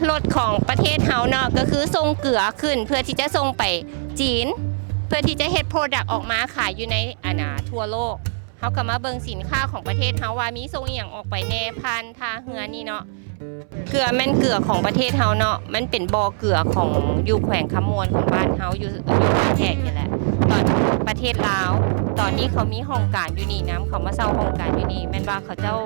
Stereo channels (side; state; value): left; silent; 63 dB below the other